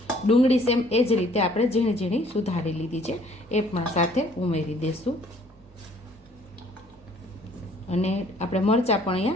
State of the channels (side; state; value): both; normal; correlation 0.59